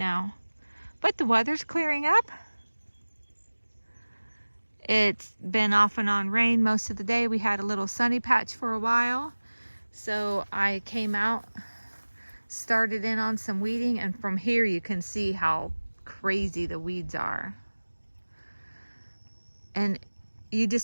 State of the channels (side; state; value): both; inverted; correlation -1.00